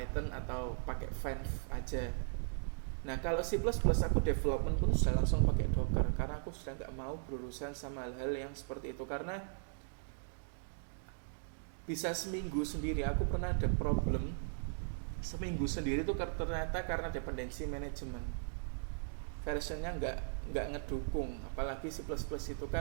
atau pakai Venv aja. Nah kalau C++ aku development pun sudah langsung pakai Docker, karena aku sudah nggak mau berurusan sama hal-hal yang seperti itu. Karena bisa seminggu sendiri, aku pernah ada problem seminggu sendiri itu ternyata karena dependency management, versionnya nggak ngedukung. Apalagi C++ itu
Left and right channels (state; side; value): silent; left; digital silence